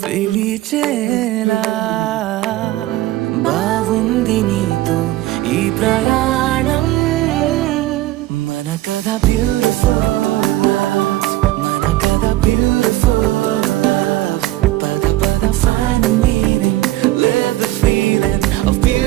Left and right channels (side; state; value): left; quieter; 16.3 dB